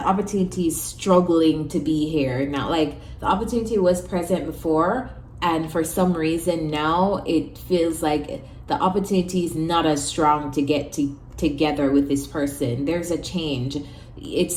opportunity is struggling to be here now. Like, the opportunity was present before, and for some reason now it feels like the opportunity is not as strong to get together with this person. There's a change.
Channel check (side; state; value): both; identical; correlation 1.00